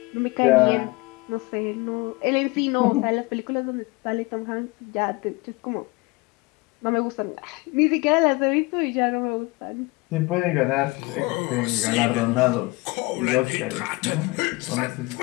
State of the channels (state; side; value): quieter; right; 24.1 dB